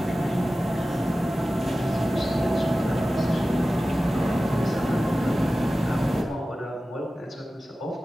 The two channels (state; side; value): normal; both; correlation 0.95